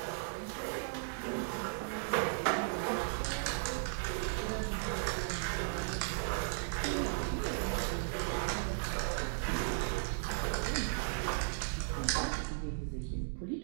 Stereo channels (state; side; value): silent; left; digital silence